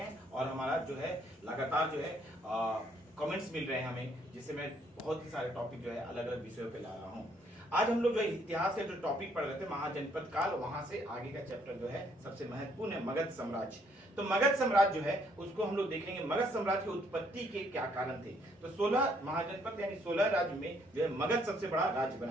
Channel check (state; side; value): normal; both; correlation 0.68